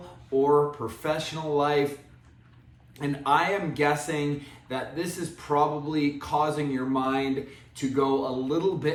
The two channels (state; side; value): identical; both; correlation 1.00